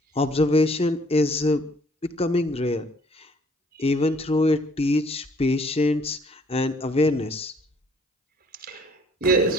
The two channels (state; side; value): normal; both; correlation 0.61